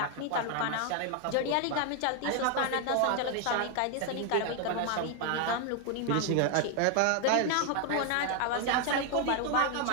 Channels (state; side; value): different; both; correlation 0.00